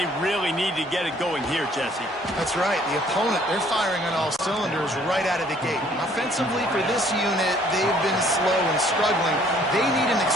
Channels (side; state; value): both; normal; correlation 0.60